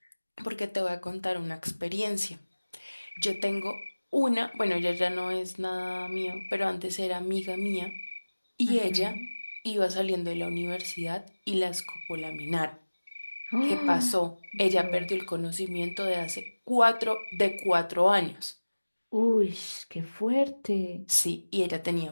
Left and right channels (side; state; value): both; inverted; correlation -1.00